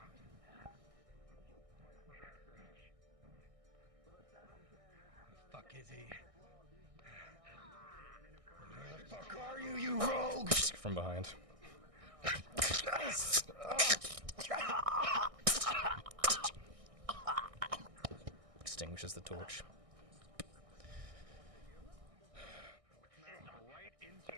Fuck is he? Where the fuck are you, you rogue? From behind. Extinguishes the torch. Right into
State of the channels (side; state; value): left; late; 1.6 ms